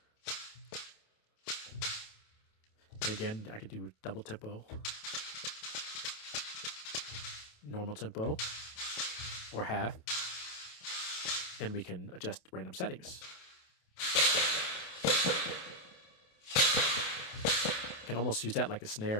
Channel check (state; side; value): late; right; 28 ms